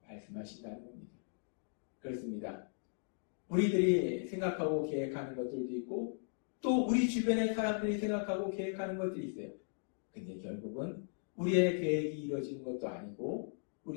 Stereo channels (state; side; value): silent; right; digital silence